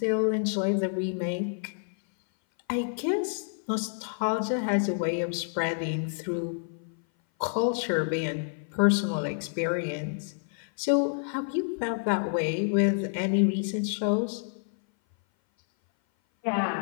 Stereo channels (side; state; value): right; silent; 57 dB below the other